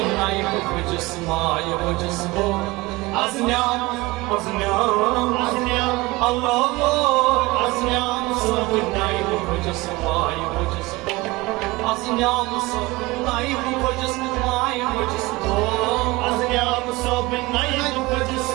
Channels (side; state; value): left; quieter; 21.8 dB